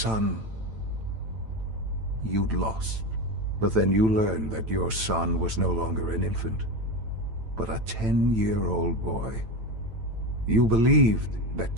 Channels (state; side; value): late; left; 9.0 ms